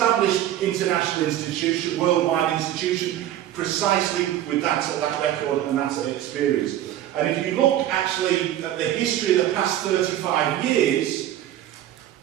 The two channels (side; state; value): left; quieter; 12.3 dB